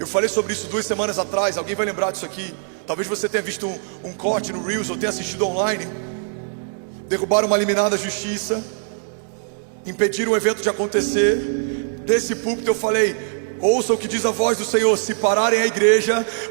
falei sobre isso 2 semanas atrás. Alguém vai lembrar disso aqui? Talvez você tenha visto um corte no Reels ou tenha assistido online. Derrubaram uma liminar da justiça, impediram o evento de acontecer. Desse púlpito eu falei, ouça o que diz a voz do Senhor: se pararem a igreja,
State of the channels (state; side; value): silent; left; digital silence